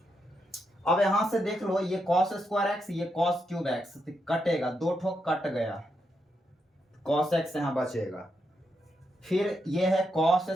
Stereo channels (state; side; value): normal; both; correlation 0.82